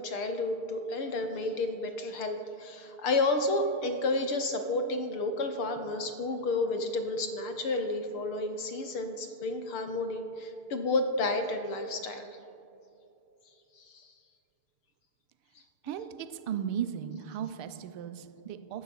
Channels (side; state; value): right; late; 6.7 ms